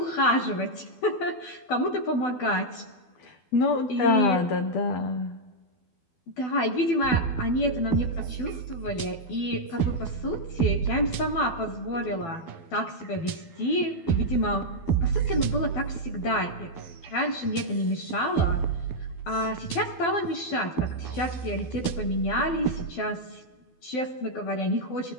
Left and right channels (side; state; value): right; late; 12 ms